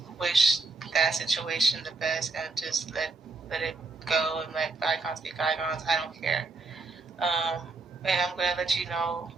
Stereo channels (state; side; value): quieter; left; 3.6 dB